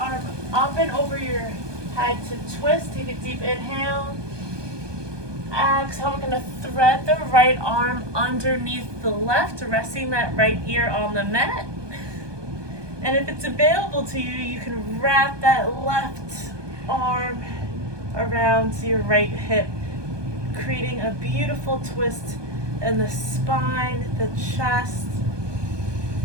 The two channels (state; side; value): late; left; 1.2 ms